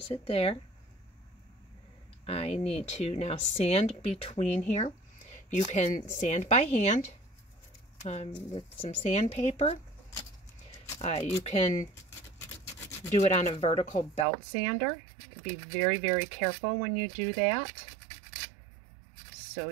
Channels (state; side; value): drops out; left; at 14.2 s